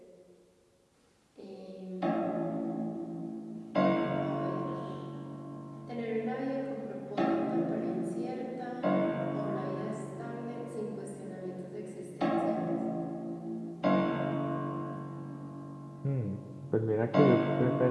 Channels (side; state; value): both; identical; correlation 1.00